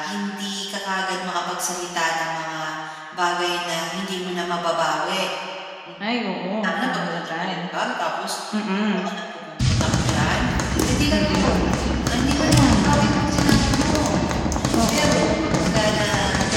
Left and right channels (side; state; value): both; identical; correlation 1.00